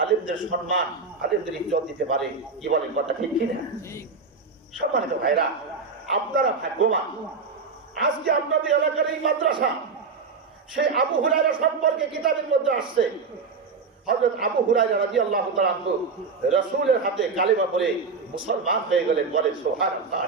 আলেমদের সম্মান, আলেমদের ইজ্জত দিতে পারে। কি বলেন, কথা ঠিক কিনা? সম্মানিত ভাইরা, আপনারা ভাগ্যবান। আজকে আপনাদের এলাকার এই মাদ্রাসা, সেই আবু হুরায়রা সম্পর্কে কিতাবের মধ্যে আসছে। হযরত আবু হুরায়রা রাদিয়াল্লাহু তাআলা আনহু রাসূলের হাতে কালিমা পড়ে মুসলমান হয়ে গেলেন। বলেন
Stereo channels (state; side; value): quieter; left; 4.7 dB